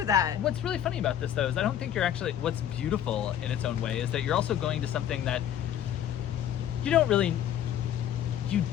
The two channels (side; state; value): right; quieter; 10.3 dB